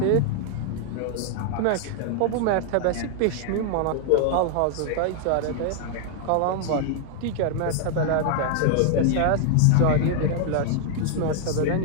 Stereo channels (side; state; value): both; different; correlation 0.00